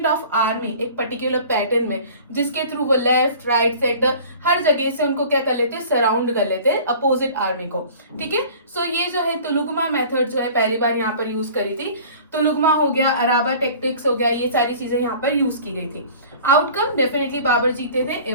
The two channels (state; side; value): inverted; both; correlation -0.45